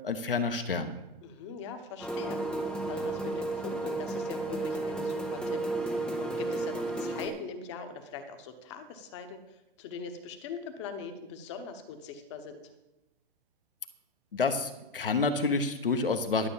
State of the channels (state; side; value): normal; both; correlation 0.33